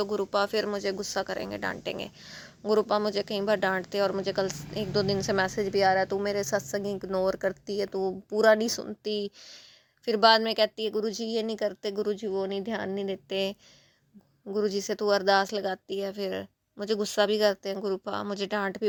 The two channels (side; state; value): both; identical; correlation 1.00